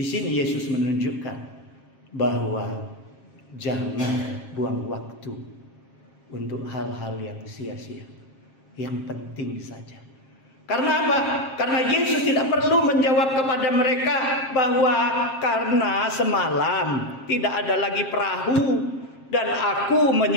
sini Yesus menunjukkan bahwa jangan buang waktu untuk hal-hal yang sia-sia, yang penting saja. Karena apa? Karena Yesus tidak perlu menjawab kepada mereka bahwa karena semalam tidak ada lagi perahu dan aku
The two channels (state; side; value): late; right; 7.5 ms